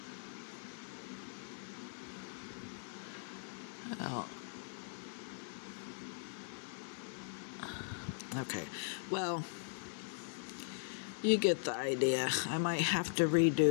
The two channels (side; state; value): right; silent; digital silence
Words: Oh. Okay, well, you get the idea. I might have to